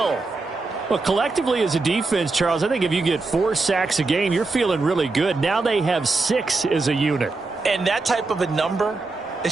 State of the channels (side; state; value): left; quieter; 3.6 dB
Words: Well, collectively as a defense, Charles, I think if you get 4 sacks a game, you're feeling really good. Now they have 6 as a unit. And that type of a number,